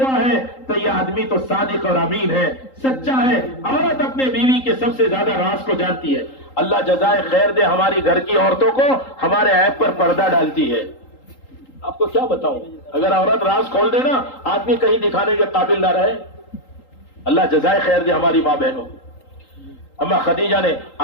ہے تو یہ آدمی تو صادق اور امین ہے، سچا ہے۔ عورت اپنے بیوی کے سب سے زیادہ راز کو جانتی ہے۔ اللہ جزائے خیر دے ہماری گھر کی عورتوں کو، ہمارے عیب پر پردہ ڈالتی ہے۔ آپ کو کیا بتاؤں، اگر عورت راز کھول دے نا آدمی کہیں دکھانے کے قابل نہ رہے۔ اللہ جزائے خیر دے ہماری ماں بہنوں۔ اما خدیجہ نے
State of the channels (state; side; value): late; right; 3.8 ms